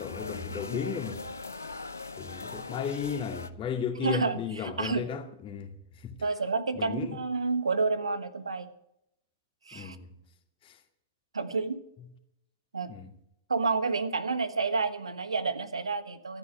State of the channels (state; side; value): inverted; both; correlation -0.54